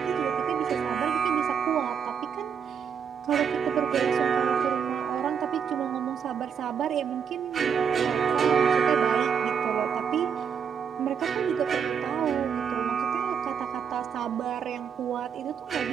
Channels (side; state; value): left; quieter; 7.3 dB